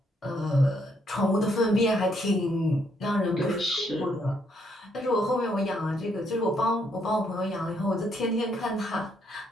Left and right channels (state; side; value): normal; both; correlation 0.73